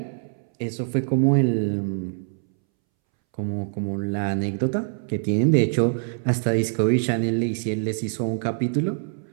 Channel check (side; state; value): left; silent; 62 dB below the other